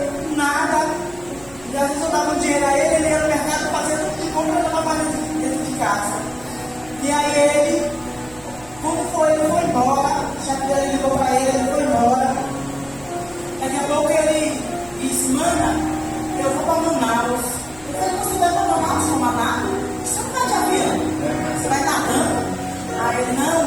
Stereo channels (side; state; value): right; noise; hum, 22 dB below the sound